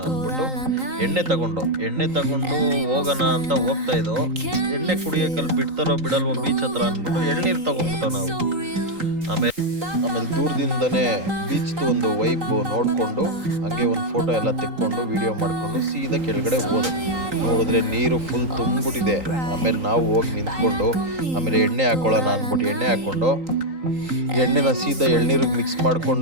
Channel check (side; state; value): left; late; 3.8 ms